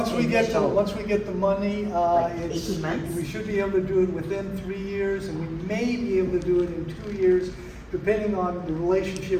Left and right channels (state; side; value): identical; both; correlation 1.00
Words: we get initial- the money, Like it's, 18 months? we should be able to do it within 3 years, and we may be able to do it in 2 years, depending on the